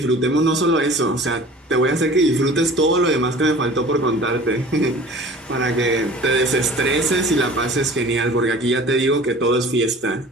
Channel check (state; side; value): normal; both; correlation 0.44